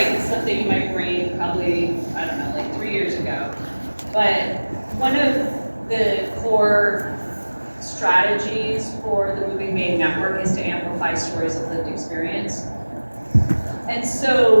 something in my brain probably, I don't know, like 3 years ago. But one of the core strategies for the Moving Maine Network is to amplify stories of lived experience. And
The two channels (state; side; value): inverted; both; correlation -1.00